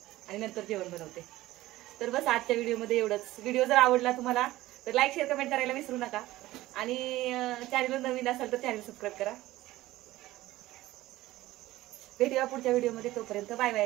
आणि नंतर जेवण बनवते. तर बस आजच्या व्हिडिओमध्ये एवढंच. व्हिडिओ जर आवडला तुम्हाला तर लाईक शेअर कमेंट करायला विसरू नका आणि चॅनलवर नवीन असाल तर चॅनल सबस्क्राईब करा. भेटूया पुढच्या व्हिडिओमध्ये. तोपर्यंत बाय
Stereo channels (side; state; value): left; quieter; 16.8 dB